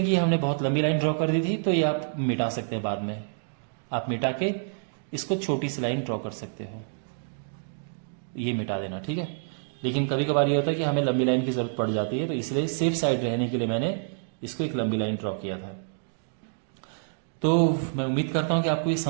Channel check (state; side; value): silent; left; digital silence